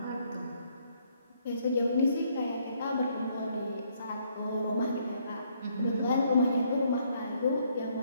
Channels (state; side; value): inverted; both; correlation -0.69